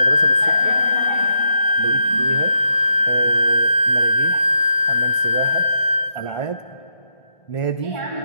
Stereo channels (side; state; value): right; late; 1.6 ms